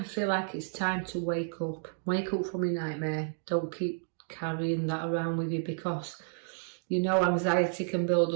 feel like it's time to wake up. Wake up from your nightmare. Don't keep carrying that around with you, because you know anxiety can build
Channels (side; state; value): left; silent; digital silence